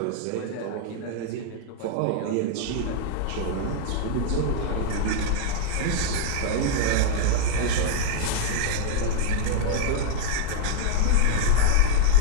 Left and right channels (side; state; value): both; different; correlation 0.00